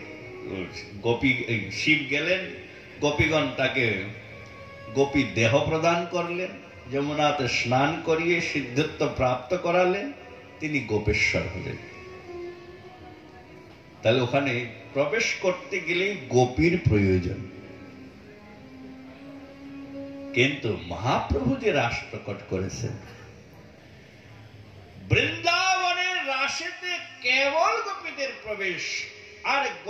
গোপী শিব গেলেন, গোপীগণ তাকে গোপী দেহ প্রদান করলেন, যমুনাতে স্নান করিয়ে সিদ্ধত্ব প্রাপ্ত করালেন, তিনি গোপেশ্বর হলেন। তাহলে ওখানে প্রবেশ করতে গেলে গোপীর প্রয়োজন। কিন্তু মহাপ্রভু যে রাস প্রকট করেছেন, বৃন্দাবনের রাসেতে কেবল গোপীদের প্রবেশ, আর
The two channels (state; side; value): identical; both; correlation 1.00